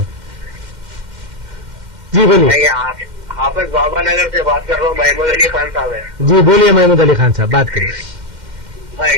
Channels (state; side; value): late; left; 2.1 ms